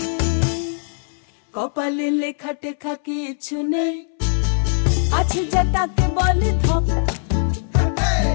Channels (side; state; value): right; silent; 65 dB below the other